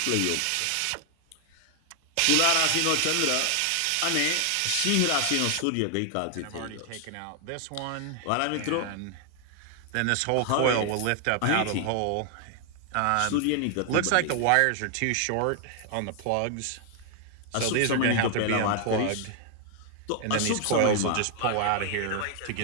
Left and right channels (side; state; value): both; different; correlation 0.00